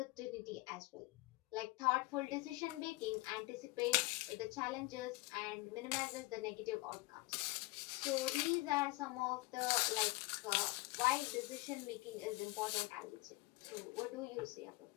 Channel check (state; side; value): quieter; right; 23.1 dB